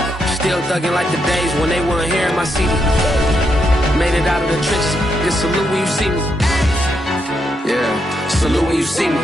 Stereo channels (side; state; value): both; normal; correlation 0.80